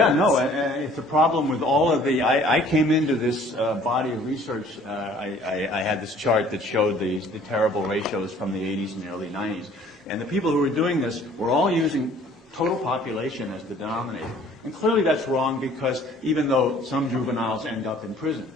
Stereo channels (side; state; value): both; normal; correlation 0.54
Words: no, it's a problem with all of the, I came into this body of research, I had this chart that showed the terrible ratios from the 80s and the early 90s. And the people who were doing this were all using total population as the denominator. And clearly that's wrong, because even though some juveniles end up in prison,